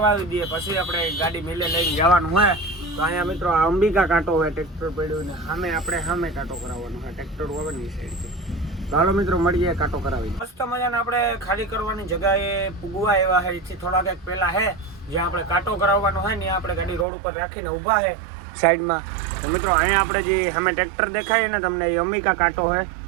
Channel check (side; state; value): left; drops out; at 17.1 s